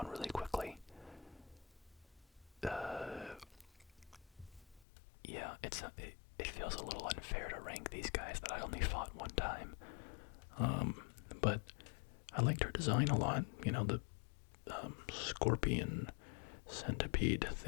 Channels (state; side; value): drops out; right; at 4.9 s